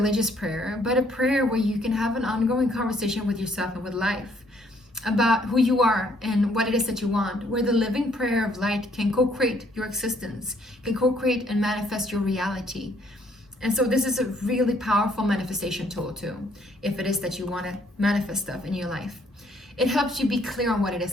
prayer, but a prayer where you can have an ongoing conversation with yourself and with life about who you are and what it is that you want, where the living prayer of light can co-create your existence, can co-create and manifest your reality. And so this is a really powerful manifestation tool too, if it is that you want to manifest stuff in your life. It helps you be clear on what it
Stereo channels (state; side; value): normal; both; correlation 0.66